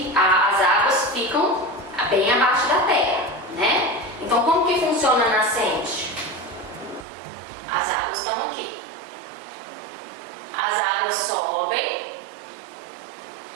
as águas ficam bem abaixo da terra, né? Então, como que funciona a nascente? As águas estão aqui. As águas sobem,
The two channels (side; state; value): left; drops out; at 7.1 s